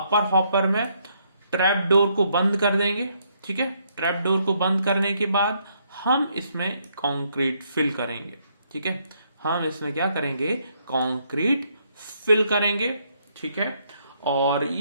हॉपर में ट्रैप डोर को बंद कर देंगे, ठीक है। ट्रैप डोर को बंद करने के बाद हम इसमें कंक्रीट फिल करेंगे, ठीक है। हम इसमें क्या करेंगे, कंक्रीट फिल करेंगे, ठीक है। और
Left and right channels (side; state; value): both; inverted; correlation -0.72